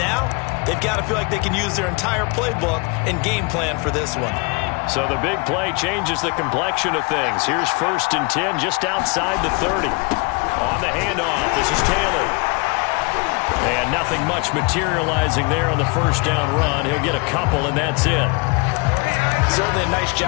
they've got to feel like they can use their entire playbook and game plan for this one. So the big play changes the complexion of things. Here's 1st and 10 just outside the 30. On the handoff, this is Taylor. And nothing much materializing there on the first down run. He'll get a couple, and that's it. Certainly a nice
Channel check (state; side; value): quieter; right; 29.5 dB